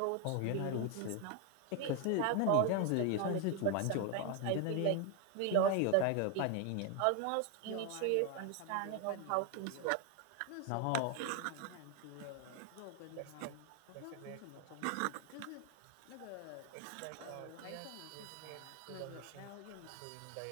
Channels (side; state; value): both; different; correlation 0.01